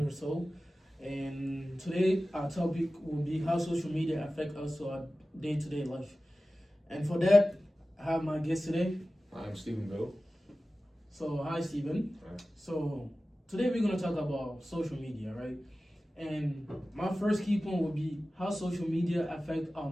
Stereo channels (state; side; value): normal; both; correlation 0.95